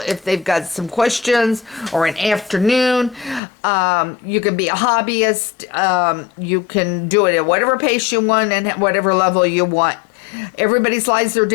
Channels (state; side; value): drops out; right; at 3.4 s